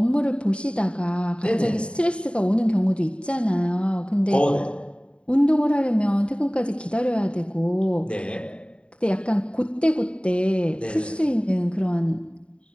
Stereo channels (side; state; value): right; late; 0.056 ms